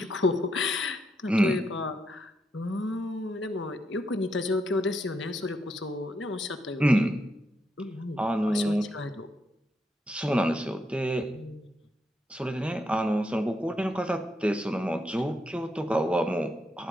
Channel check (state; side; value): normal; both; correlation 0.80